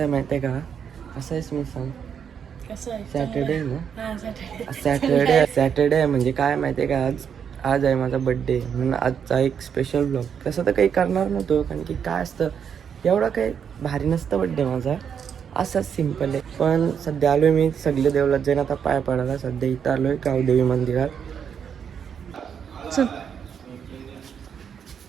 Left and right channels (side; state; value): left; quieter; 7.6 dB